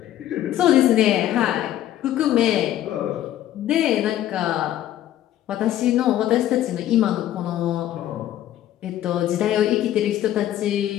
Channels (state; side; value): quieter; right; 12.5 dB